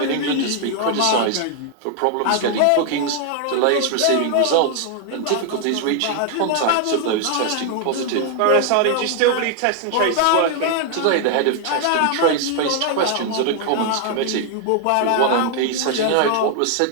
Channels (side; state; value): both; different; correlation 0.00